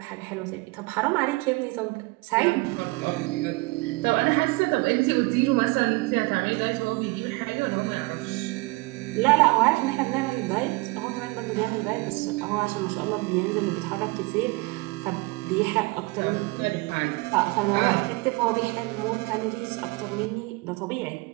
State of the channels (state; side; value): quieter; left; 25.0 dB